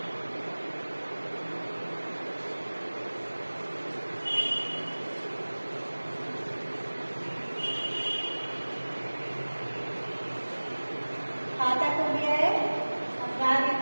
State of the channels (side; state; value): both; inverted; correlation -1.00